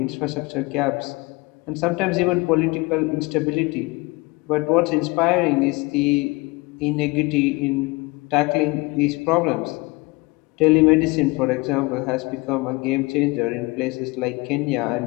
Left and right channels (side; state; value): right; quieter; 24.8 dB